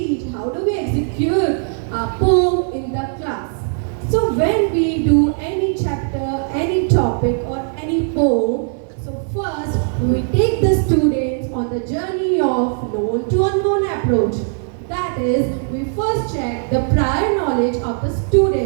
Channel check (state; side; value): silent; left; 63 dB below the other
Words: how do we execute a poem in the class. So when we do any chapter, any topic or any poem, so first we take the students on the journey of known to unknown approach. That is, we first check the prior knowledge of the